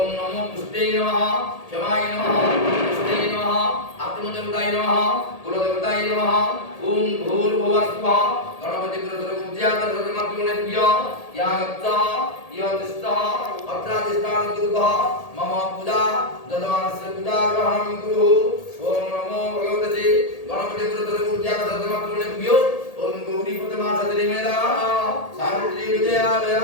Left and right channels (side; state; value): right; late; 1.8 ms